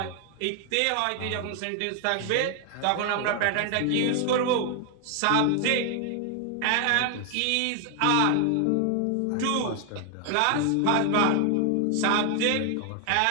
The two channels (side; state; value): both; different; correlation 0.00